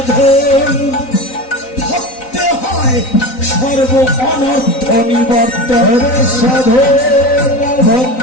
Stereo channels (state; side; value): late; right; 3.9 ms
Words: ভক্তে হয় সর্ব অনর্থ নিবর্তন। সাধন